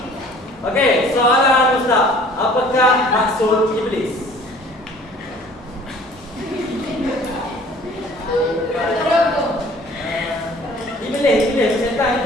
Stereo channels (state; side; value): normal; both; correlation 0.51